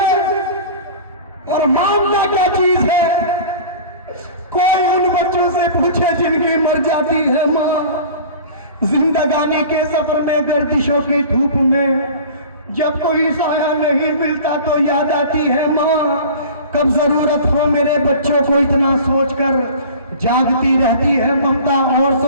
और ममता क्या चीज है, कोई उन बच्चों से पूछे जिनकी मर जाती है माँ। जिंदगानी के सफर में गर्दिशों की धूप में जब कोई साया नहीं मिलता तो याद आती है माँ। कब जरूरत हो मेरे बच्चों को इतना सोचकर जागती रहती है ममता और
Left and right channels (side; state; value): both; inverted; correlation -0.40